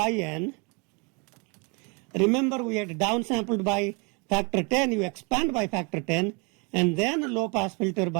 Remember we had downsampled by factor 10. You expand by factor 10 and then low pass filter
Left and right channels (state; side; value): quieter; left; 31.9 dB